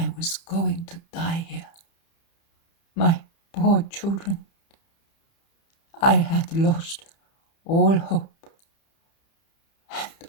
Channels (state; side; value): late; right; 30 ms